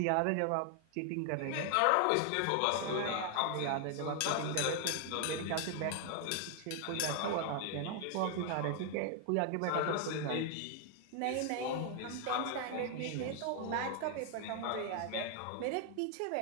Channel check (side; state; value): both; different; correlation 0.00